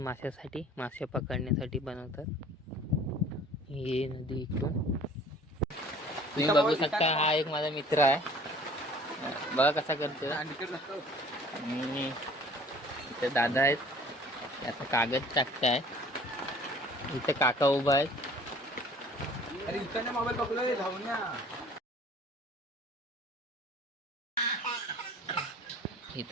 मासे पकडण्यासाठी बनवतात. ही नदी इकडून तुम्ही बघू शकता. हा एक माझा मित्र आहे, बघा कसा करतो. आणि इथे दादा आहेत, आता कागद टाकताय. इथे काका उभा आहेत. अरे इकडनं मोबाईल पकडलोय, धावून या.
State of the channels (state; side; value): normal; both; correlation 0.50